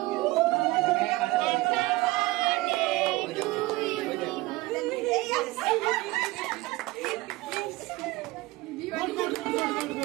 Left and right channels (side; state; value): left; quieter; 20.1 dB